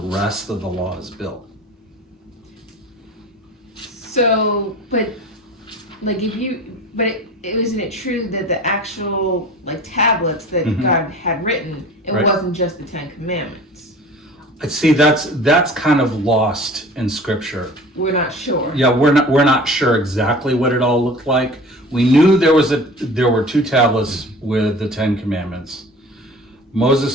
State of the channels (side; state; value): both; normal; correlation 0.41